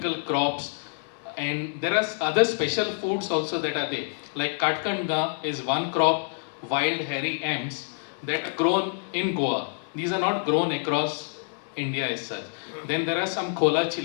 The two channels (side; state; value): right; silent; digital silence